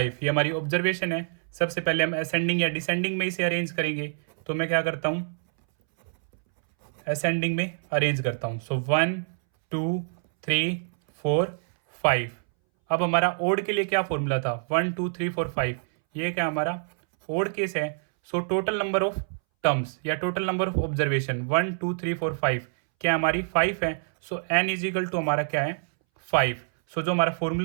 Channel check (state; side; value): silent; left; 61 dB below the other